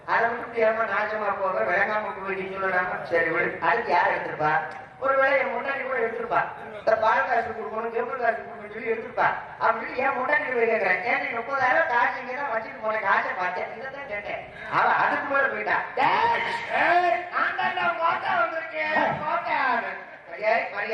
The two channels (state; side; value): identical; both; correlation 1.00